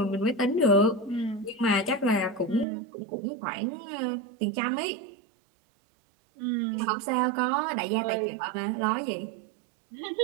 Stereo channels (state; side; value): drops out; left; at 2.7 s